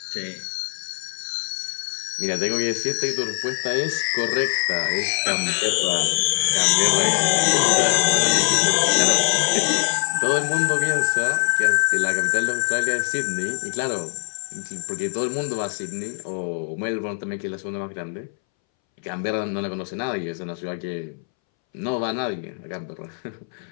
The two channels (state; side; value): silent; right; 63 dB below the other